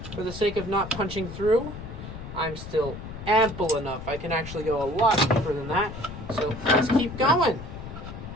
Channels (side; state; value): left; noise; rumble, 10 dB below the sound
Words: for the sake of not punching through, I'm still ample enough. I can actually go a lot deeper than that. So let's keep going.